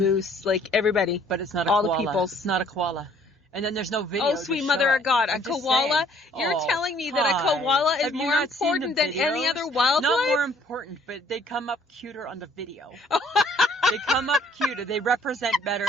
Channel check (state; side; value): normal; both; correlation 0.60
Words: like everybody. But it's not a koala. All the peoples. It's not a koala. And then there's no video. Oh, sweet mother of God. A koala? You're telling me that a koala is more important than any other wildlife? Not more important, but they come up cuter on the video. They come up cuter. They represent better